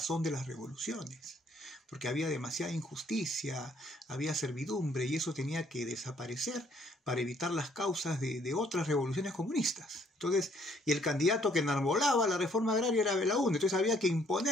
de las revoluciones, porque había demasiada injusticia, había servidumbre, y eso tenía que desaparecer para evitar las causas de otras revoluciones comunistas. Entonces, y el candidato que enarbolaba la reforma agraria era Belaúnde, entonces había que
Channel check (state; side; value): normal; both; correlation 0.64